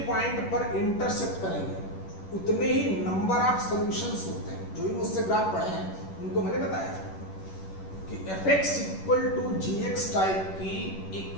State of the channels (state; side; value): late; right; 11 ms